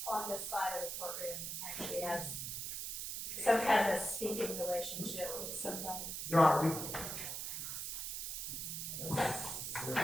on this side of the courtroom actually has some kind of a speaking relationship with somebody. Your Honor,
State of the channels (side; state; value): right; noise; hiss, 4 dB below the sound